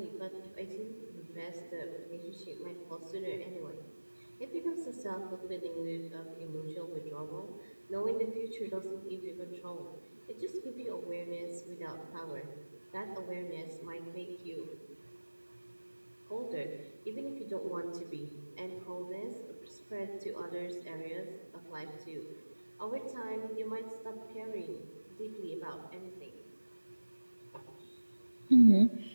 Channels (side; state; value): both; inverted; correlation -1.00